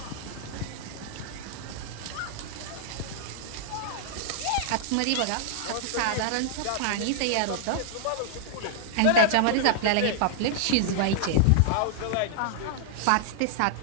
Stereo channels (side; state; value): both; different; correlation -0.01